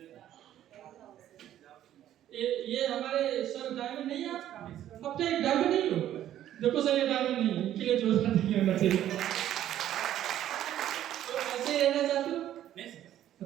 ये हमारे सर डायमंड नहीं है, अब तो एक डायमंड नहीं हो, देखो सर ये डायमंड नहीं है, इनके लिए जोरदार नहीं होना चाहिए। तो ऐसे रहना चाहते हो?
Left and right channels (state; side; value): quieter; left; 11.9 dB